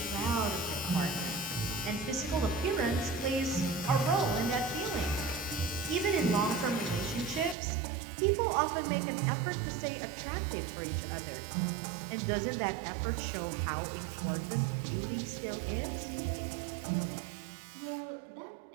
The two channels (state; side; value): drops out; left; at 7.6 s